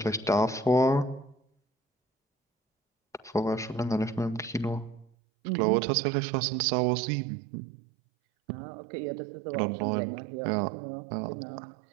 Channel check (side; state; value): left; drops out; at 5.1 s